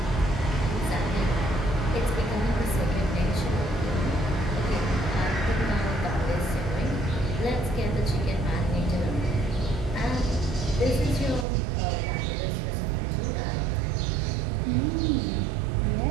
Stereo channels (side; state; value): left; drops out; at 11.5 s